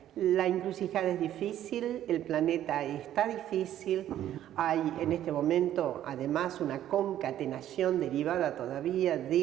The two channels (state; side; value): quieter; left; 11.9 dB